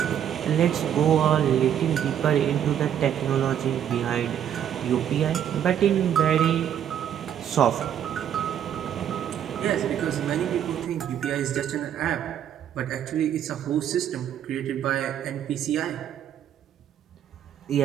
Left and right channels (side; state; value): left; quieter; 9.8 dB